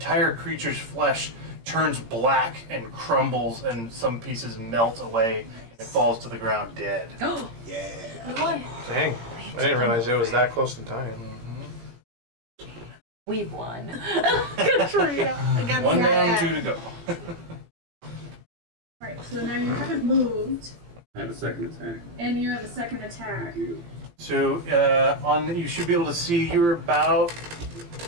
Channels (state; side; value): late; left; 17 ms